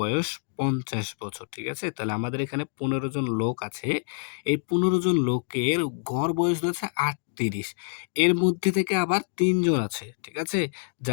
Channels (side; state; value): right; silent; 60 dB below the other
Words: বয়স ৫০ বছর, ঠিক আছে। তাহলে আমাদের এখানে ১৫ জন লোক আছে, এই ১৫ জন লোকের গড় বয়স হচ্ছে ৩৮, এর মধ্যে থেকে আবার ৩ জন আছে, ঠিক আছে,